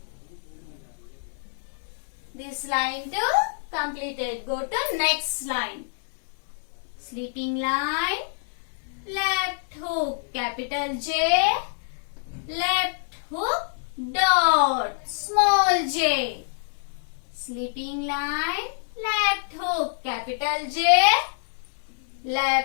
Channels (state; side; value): silent; right; 61 dB below the other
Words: This line too completed. Go to next line. Sleeping line, left hook, capital J, left hook, dot, small j. Sleeping line, left hook, capital J,